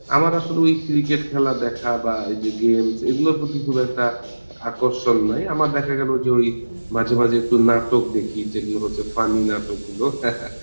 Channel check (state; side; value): inverted; both; correlation -1.00